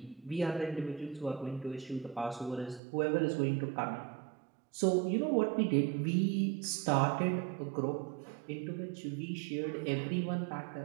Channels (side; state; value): left; drops out; at 2.8 s